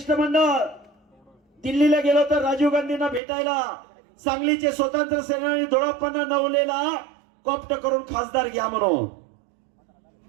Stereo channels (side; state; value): left; drops out; at 3.2 s